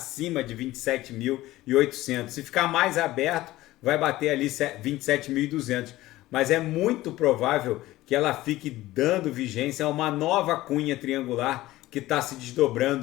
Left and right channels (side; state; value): right; quieter; 16.9 dB